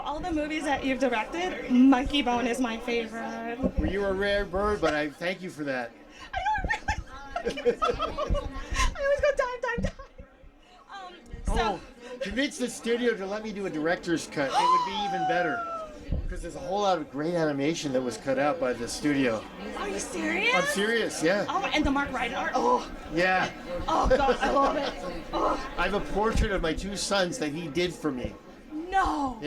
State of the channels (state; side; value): identical; both; correlation 1.00